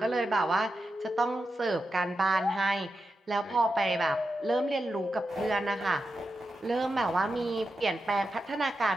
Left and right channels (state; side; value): normal; both; correlation 0.88